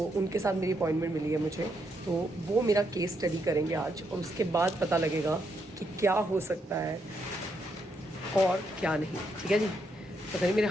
उनके साथ मेरी अपॉइंटमेंट मिली है मुझे, तो वो मेरा केस स्टडी करेंगे आज, और उसके बाद पता लगेगा कि क्या हो सकता है और क्या नहीं। ठीक है जी, पता नहीं मेरे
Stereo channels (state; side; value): normal; both; correlation 0.78